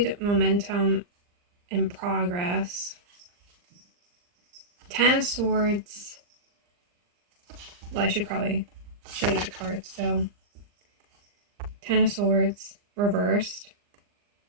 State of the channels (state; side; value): late; left; 39 ms